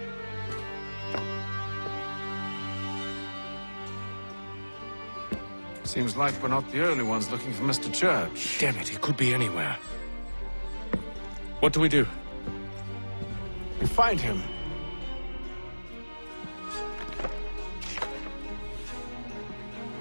Seems like we're not the only ones looking for Mr. Church. Damn it, he could be anywhere. What do we do? We find him.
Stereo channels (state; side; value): inverted; both; correlation -1.00